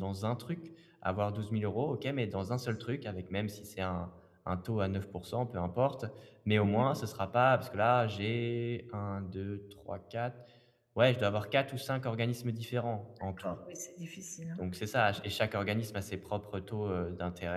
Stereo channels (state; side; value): identical; both; correlation 1.00